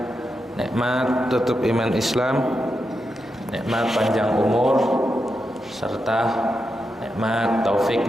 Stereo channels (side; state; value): both; normal; correlation 0.86